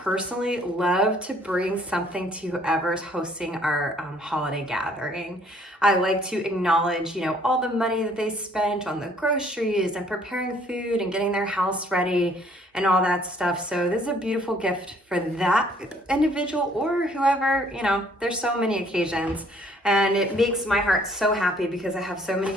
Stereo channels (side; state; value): both; normal; correlation 0.61